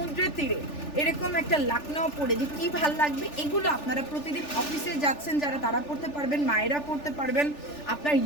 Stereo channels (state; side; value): late; right; 3.4 ms